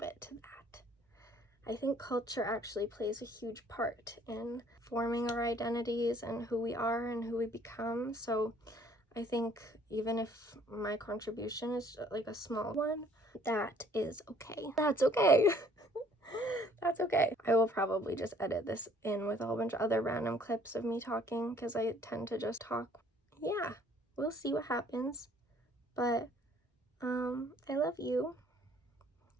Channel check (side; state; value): both; normal; correlation 0.60